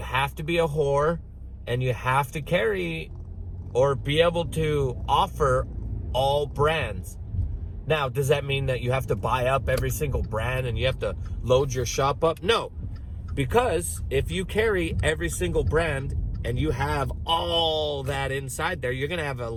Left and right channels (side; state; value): both; identical; correlation 1.00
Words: to be a whore and you have to carry or be able to offer all brands. Now, does that mean that you have to buy up every single brand and you have to load your shop up? No, because if you carry every single brand and you have all that inside there, you're going to have a